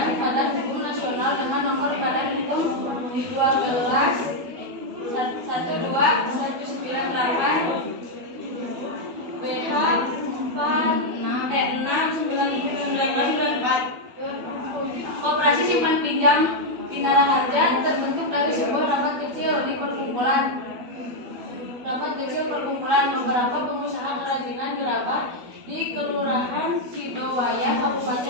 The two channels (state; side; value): late; left; 12 ms